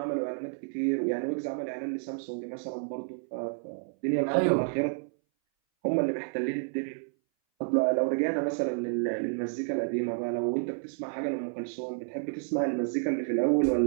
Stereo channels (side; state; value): left; silent; 58 dB below the other